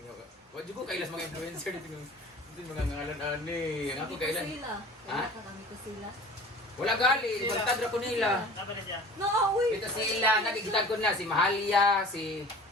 Wad ko kailas mga influencer dito yung mga ngalan ani. Ang ako kailan. Ha? Wala gali, magtadra ko nila. No, uy. Ito sila, nagigitag ko na si Mahalia, si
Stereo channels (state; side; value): normal; both; correlation 0.43